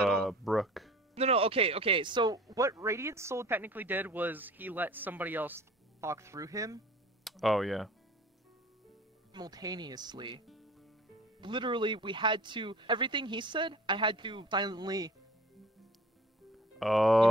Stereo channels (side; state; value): both; normal; correlation 0.45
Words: all. Brooke. No, okay. So what Radiant Soul technically did was he let somebody else talk through him. Oh yeah. Simultaneously. Literally, we had to. Everything he said, I had to silently.